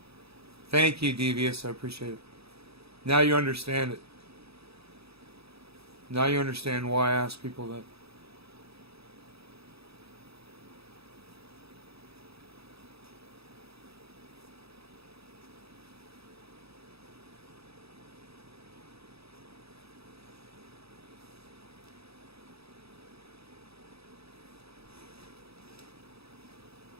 Thank you, Devious. I appreciate it. Now you understand it. Now you understand why I ask people that.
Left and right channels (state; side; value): late; left; 0.77 ms